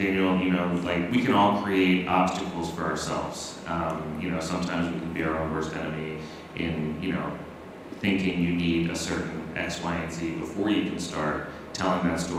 Daniel, like, we can all create obstacles for ourselves. Sometimes we can be our own worst enemy in, thinking you need a certain X, Y, and Z before you can start telling that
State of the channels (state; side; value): identical; both; correlation 1.00